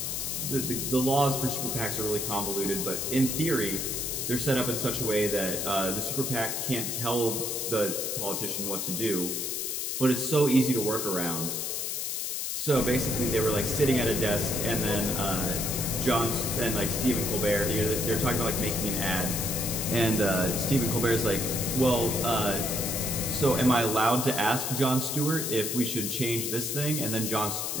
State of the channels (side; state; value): left; noise; hiss, 2 dB below the sound